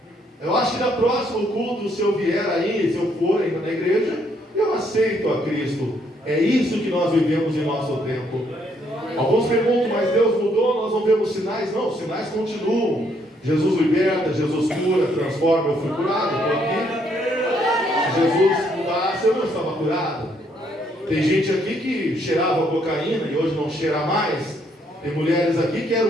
Eu acho que na próximo culto, se eu vier aí, se eu for ainda na igreja, eu aceito a Cristo. É isso que nós vivemos em nosso tempo. Alguns perguntam, mas Deus mudou, nós não vemos sinais? Não, os sinais continuam. Jesus liberta, Jesus cura, transforma. Eu fui curado, estou aqui. Se Jesus mudasse Você não estava curado? Tem gente aqui que cheirava cocaína e hoje não cheira mais. Tem mulheres aqui que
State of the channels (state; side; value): normal; both; correlation 0.70